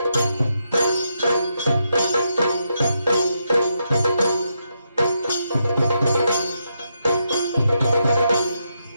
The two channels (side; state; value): both; inverted; correlation -0.82